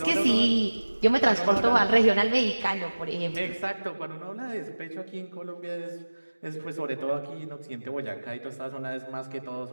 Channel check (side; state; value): both; inverted; correlation -1.00